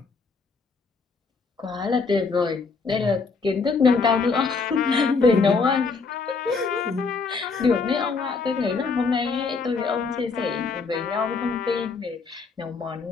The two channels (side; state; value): right; quieter; 4.6 dB